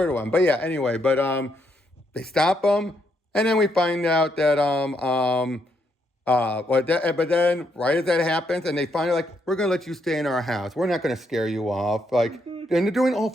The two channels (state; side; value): normal; both; correlation 0.76